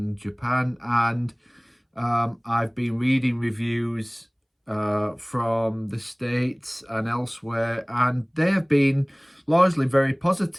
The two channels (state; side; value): identical; both; correlation 1.00